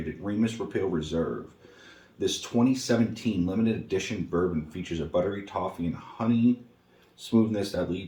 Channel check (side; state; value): both; identical; correlation 1.00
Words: Remus Repeal Reserve. This 2017 limited edition bourbon features a buttery toffee and honey smoothness that